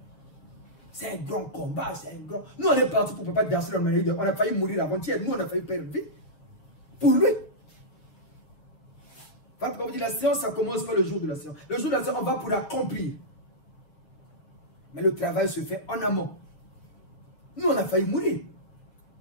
C'est un grand combat, c'est un grand... Nous, on est partis pour ne pas danser dans le milieu. On a failli mourir avant-hier. Nous, on a failli perdre vie. Pour lui. Comme on dit, la séance, ça commence pas le jour de la séance. Le jour de la séance, on va pour accomplir. Mais le travail se fait en amont. Nous, on a failli mourir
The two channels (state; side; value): late; right; 7.0 ms